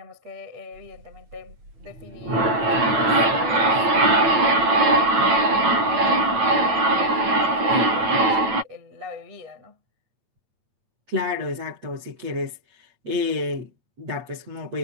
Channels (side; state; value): left; late; 9.0 ms